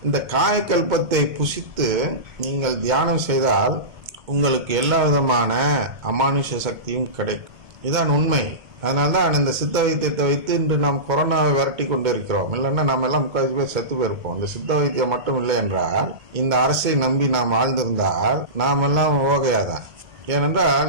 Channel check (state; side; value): late; left; 1.7 ms